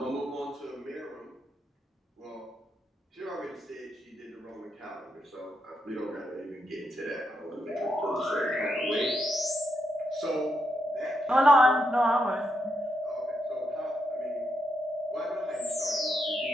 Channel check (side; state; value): both; normal; correlation 0.81